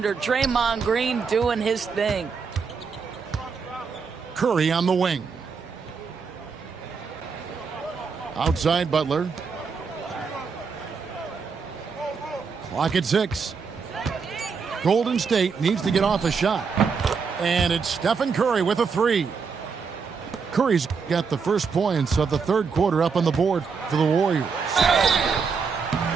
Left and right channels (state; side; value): quieter; left; 5.5 dB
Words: Draymond Green doing his thing. Curry on the wing. Outside Butler. Clock at 6. Golden State needs to get off a shot. And it's Stephen Curry with a three. Curry's got the first points of the third quarter up on the board for the Warriors.